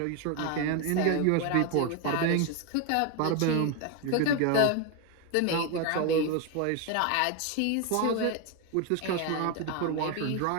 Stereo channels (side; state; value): both; different; correlation 0.01